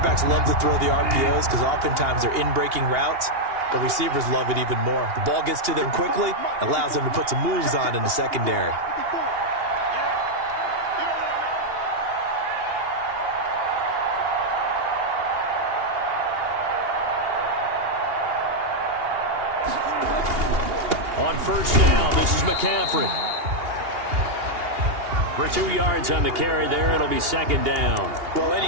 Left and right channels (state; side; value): late; left; 2.8 ms